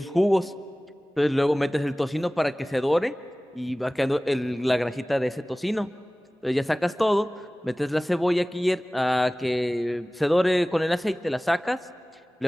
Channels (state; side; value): normal; both; correlation 0.98